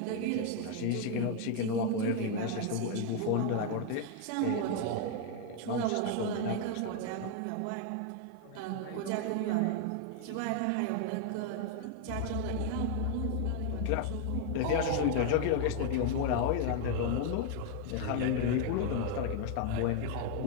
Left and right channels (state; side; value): different; both; correlation 0.00